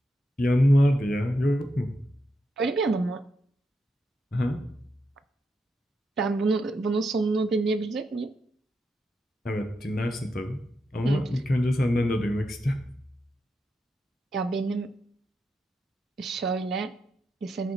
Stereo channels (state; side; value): normal; both; correlation 0.85